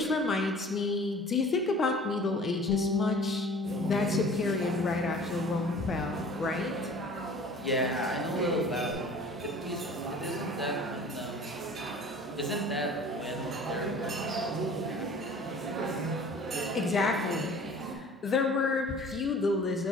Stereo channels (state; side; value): normal; both; correlation 0.46